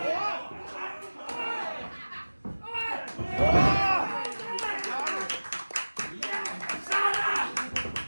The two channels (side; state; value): both; inverted; correlation -1.00